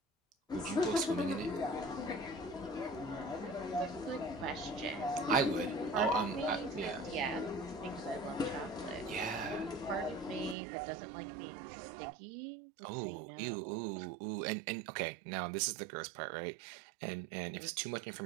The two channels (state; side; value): drops out; left; at 10.6 s